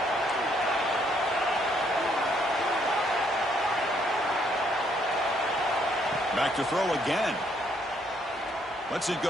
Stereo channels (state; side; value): normal; both; correlation 0.70